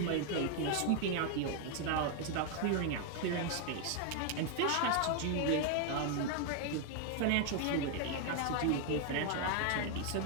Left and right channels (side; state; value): both; different; correlation 0.01